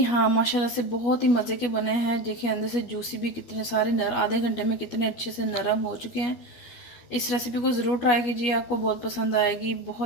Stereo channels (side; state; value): right; late; 12 ms